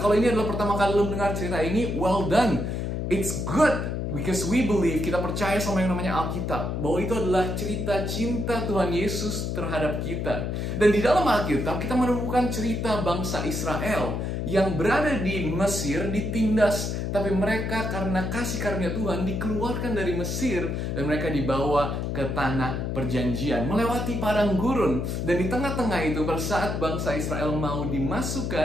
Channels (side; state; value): left; noise; hum, 2 dB below the sound